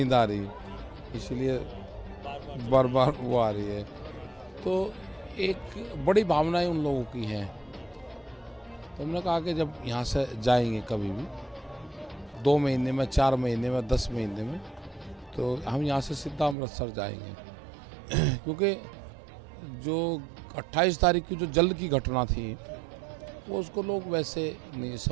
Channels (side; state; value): left; drops out; at 16.6 s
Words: आ रही, इसलिए बार बार वो आ रही है। तो एक बड़ी भावनाएं उन लोगों की हैं, तो हमने कहा कि जब यहाँ से जाएंगे कभी भी 2 महीने में, 4 महीने में, 10 महीने में, तो हम यहाँ से सीधा अमृतसर जाएंगे क्योंकि जो 28 तारीख की जो जल की घटना थी वो उसको लोग वैसे नहीं